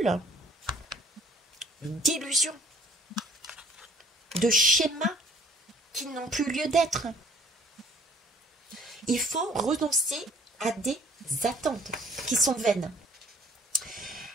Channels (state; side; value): normal; both; correlation 0.57